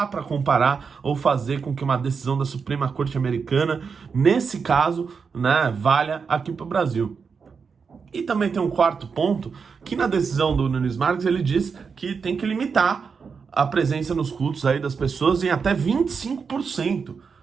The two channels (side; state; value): left; quieter; 5.6 dB